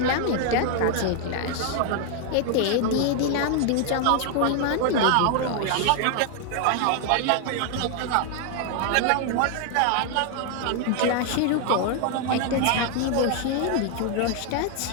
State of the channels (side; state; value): both; different; correlation 0.00